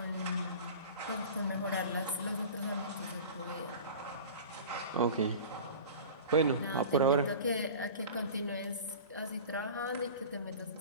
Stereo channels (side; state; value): both; inverted; correlation -0.38